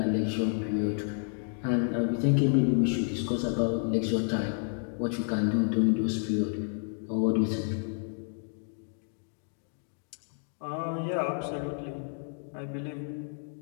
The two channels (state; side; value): silent; right; 58 dB below the other